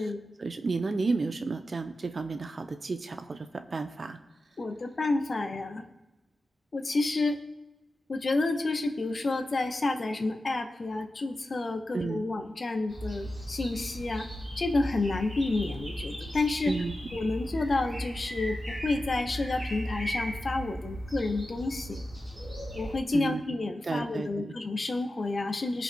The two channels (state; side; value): normal; both; correlation 0.92